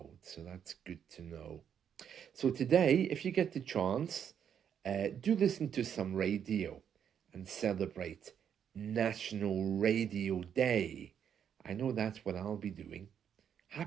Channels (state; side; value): quieter; left; 8.4 dB